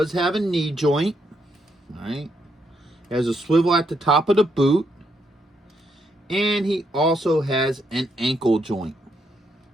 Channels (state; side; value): normal; both; correlation 0.77